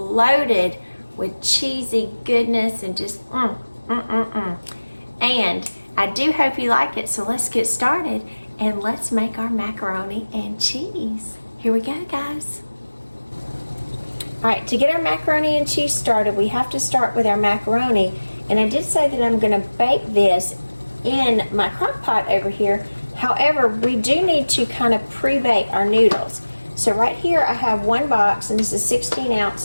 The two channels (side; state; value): both; inverted; correlation -1.00